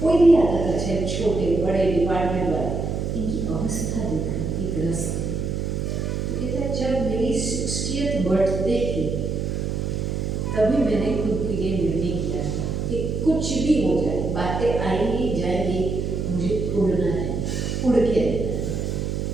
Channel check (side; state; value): right; noise; hum, 2 dB below the sound